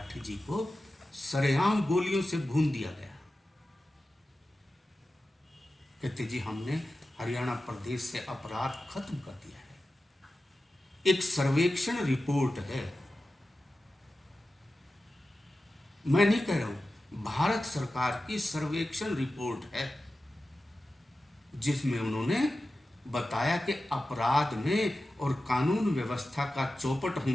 जी को सरेआम गोलियों से भून दिया गया। कहते जी हमने हरियाणा प्रदेश से अपराध खत्म कर दिया है। एक सर्वेक्षण रिपोर्ट है, मैं नहीं कह रहा हूं, भारत सरकार की सर्वेक्षण रिपोर्ट है, जिसमें उन्होंने बताया कि अपराध में और कानून व्यवस्था का चौपट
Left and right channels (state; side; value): normal; both; correlation 0.93